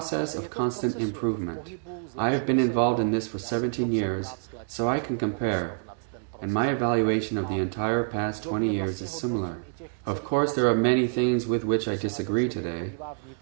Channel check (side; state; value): left; silent; digital silence